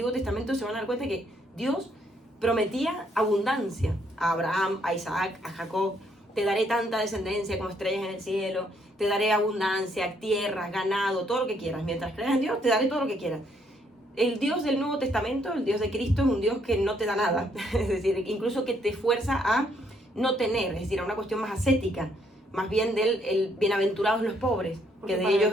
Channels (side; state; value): both; normal; correlation 0.70